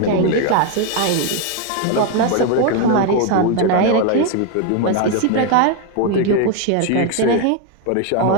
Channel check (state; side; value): different; both; correlation 0.01